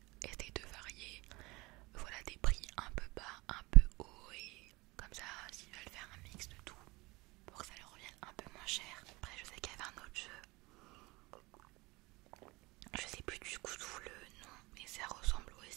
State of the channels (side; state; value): left; quieter; 23.1 dB